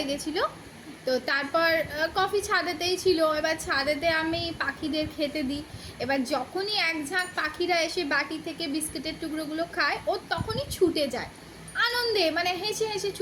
গেছিল। তো তারপর কফি ছাদেতেই ছিল। এবার ছাদেতে আমি পাখিদের খেতে দিই। এবার যখনই এক ঝাঁক পাখিরা এসে বাটি থেকে বিস্কুটের টুকরোগুলো খায়, ও তখনই ছুটে যায় আনন্দে, মানে হেসে হেসে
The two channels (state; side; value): identical; both; correlation 1.00